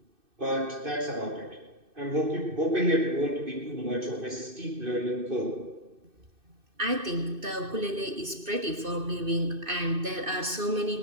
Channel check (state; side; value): late; left; 2.6 ms